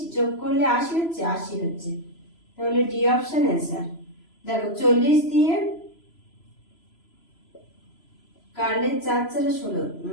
যোগ করলে 80 হচ্ছে, 80 হচ্ছে, তাহলে ডি অপশন आंसर। দেখো 40 দিয়ে কাটলে 4 4 16,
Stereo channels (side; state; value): right; late; 3.0 ms